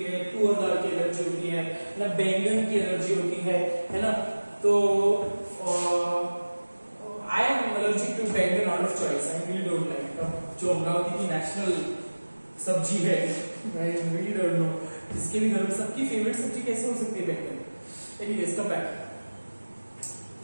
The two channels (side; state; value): both; inverted; correlation -1.00